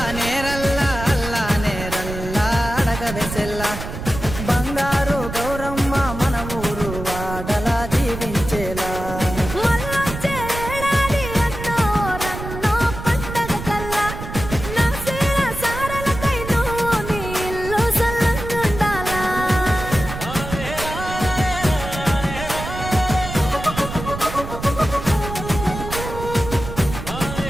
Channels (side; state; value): right; noise; rumble, 8 dB below the sound